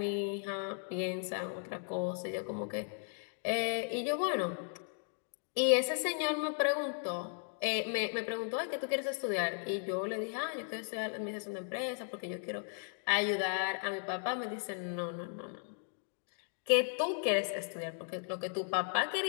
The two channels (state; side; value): silent; right; 54 dB below the other